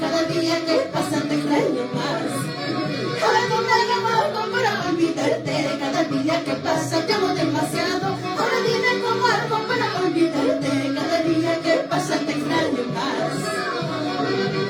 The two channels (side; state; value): both; identical; correlation 1.00